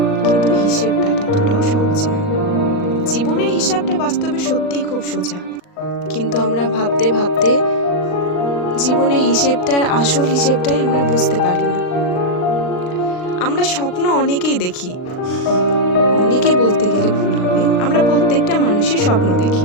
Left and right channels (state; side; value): late; right; 39 ms